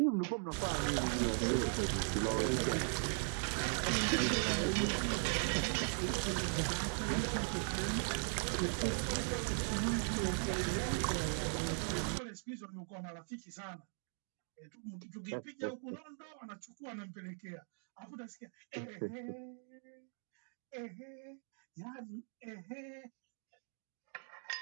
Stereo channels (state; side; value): silent; left; 52 dB below the other